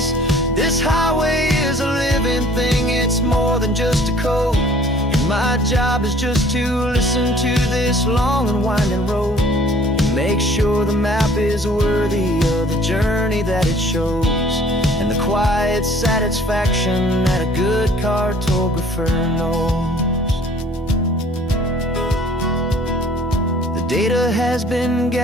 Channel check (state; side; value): normal; both; correlation 0.53